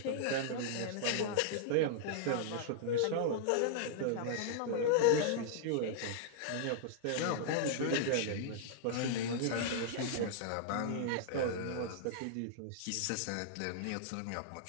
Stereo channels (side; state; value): both; different; correlation -0.01